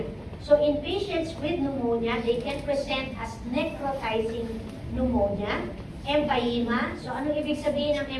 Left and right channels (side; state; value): both; identical; correlation 1.00